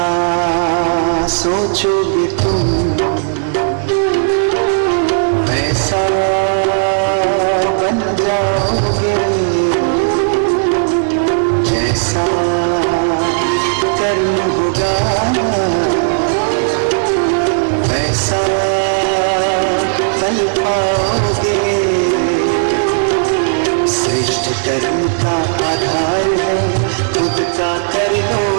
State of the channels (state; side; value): silent; left; digital silence